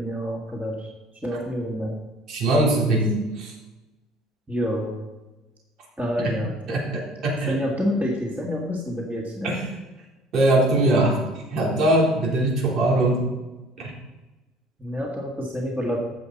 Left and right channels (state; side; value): normal; both; correlation 0.51